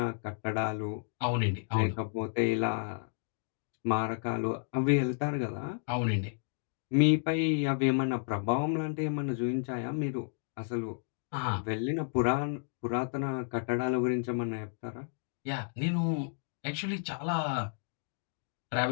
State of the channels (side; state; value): right; silent; digital silence